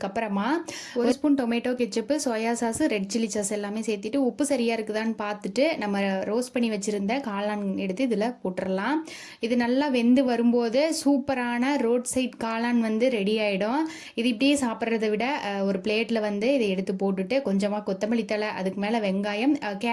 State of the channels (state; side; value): identical; both; correlation 1.00